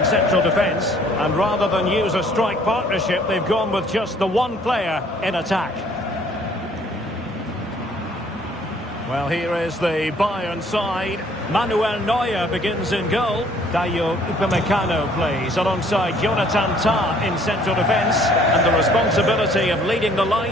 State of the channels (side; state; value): both; normal; correlation 0.59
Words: central defence. And rather than use a strike partnership, they've gone with just the one player in attack. Well, here is the Bayern side. Manuel Neuer begins in goal. Dayo Upamecano plays alongside Jonathan Tah in central defence. And the responsibility of leading the